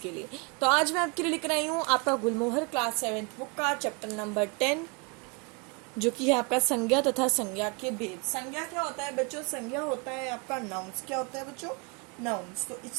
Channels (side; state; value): left; quieter; 31.0 dB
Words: लिए। तो आज मैं आपके लिए लेकर आई हूँ आपका गुलमोहर क्लास 7th बुक का चैप्टर नंबर 10, जो कि है आपका संज्ञा तथा संज्ञा के भेद। संज्ञा क्या होता है बच्चों? संज्ञा होता है आपका नाउन्स। क्या होता है बच्चों? नाउन्स। तो